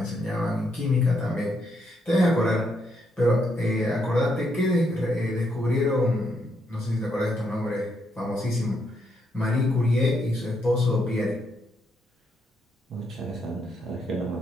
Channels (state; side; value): normal; both; correlation 0.77